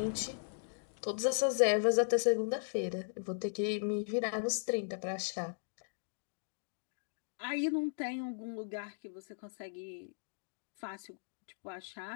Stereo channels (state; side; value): silent; right; digital silence